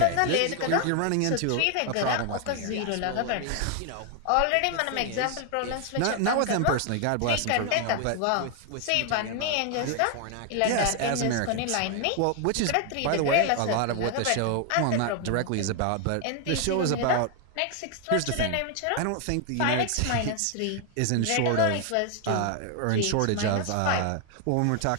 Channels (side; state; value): both; different; correlation 0.00